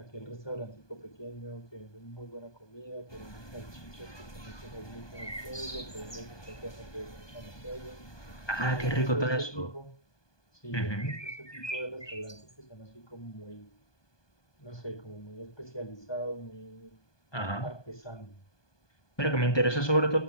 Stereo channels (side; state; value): right; late; 1.2 ms